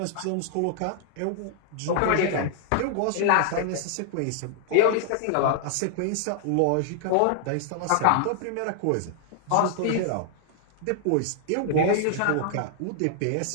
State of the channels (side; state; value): both; different; correlation -0.01